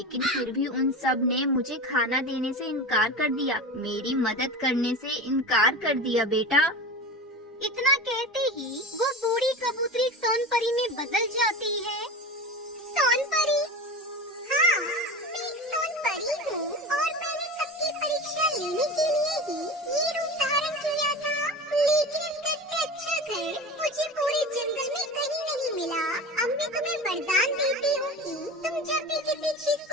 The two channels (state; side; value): normal; both; correlation 0.30